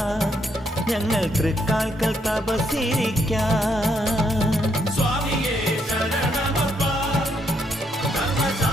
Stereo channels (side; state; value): both; normal; correlation 0.75